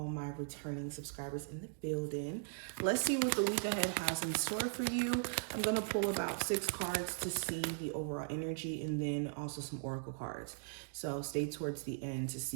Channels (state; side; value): silent; left; digital silence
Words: my returning subscribers in the building. Let's see what the week ahead has in store for you. I'm going to pull about 6 cards to see the overall energy and then also some oracle cards. So stay towards the end to